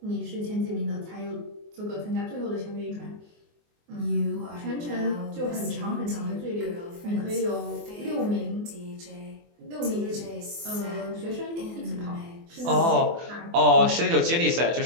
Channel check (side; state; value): left; late; 24 ms